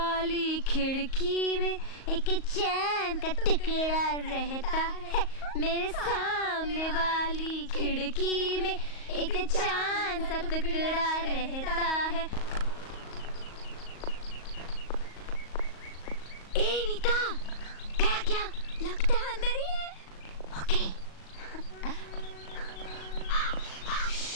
खिड़की में एक चैन का टुकड़ा रहता है। मेरे सामने वाली खिड़की में एक चांद सा टुकड़ा रहता है। ए नीता, गया क्या? लगता है अंदर ही है। ओके।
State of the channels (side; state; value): right; late; 38 ms